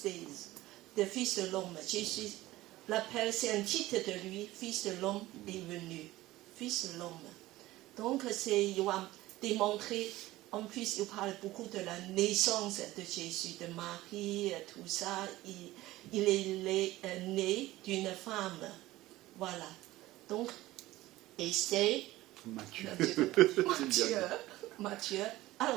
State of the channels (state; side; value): quieter; left; 17.2 dB